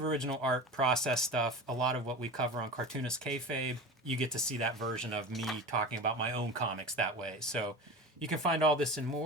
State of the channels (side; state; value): both; normal; correlation 0.31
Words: original art, process stuff. A lot of what we cover on Cartoonist Kayfabe, you get to see that version of me talking about my own comics that way. So you can find all this and